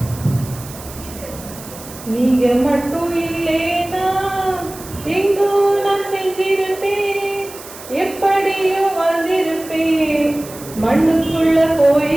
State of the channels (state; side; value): noise; right; hiss, 16 dB below the sound